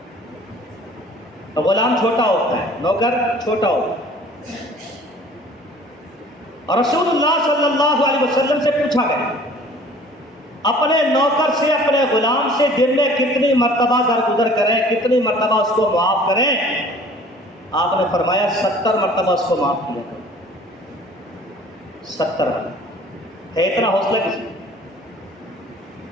غلام چھوٹا ہوتا ہے، نوکر چھوٹا ہوتا ہے، اور رسول اللہ صلی اللہ علیہ وسلم سے پوچھا گیا اپنے نوکر سے، اپنے غلام سے دن میں کتنی مرتبہ درگزر کریں، کتنی مرتبہ اس کو معاف کریں؟ آپ نے فرمایا 70 مرتبہ اس کو معاف کیا کرو۔ 70 مرتبہ ہے اتنا حوصلہ کسی؟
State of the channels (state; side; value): normal; both; correlation 0.50